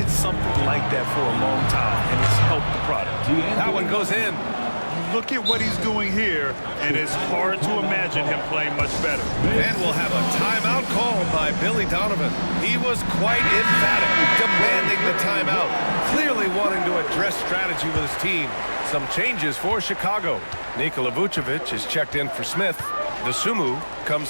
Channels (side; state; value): both; inverted; correlation -1.00